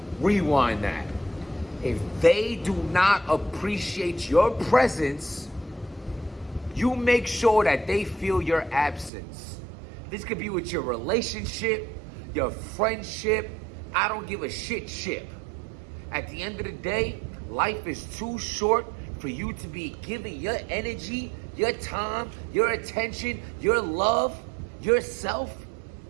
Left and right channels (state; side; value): drops out; left; at 9.1 s